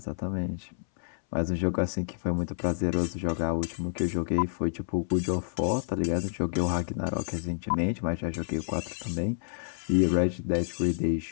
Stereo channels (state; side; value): silent; right; 58 dB below the other